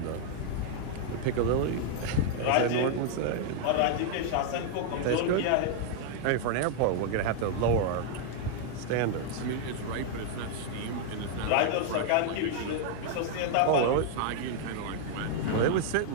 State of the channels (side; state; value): both; different; correlation 0.00